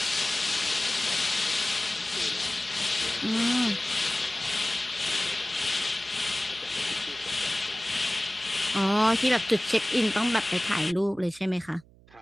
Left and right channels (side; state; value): right; noise; hum, 26 dB below the sound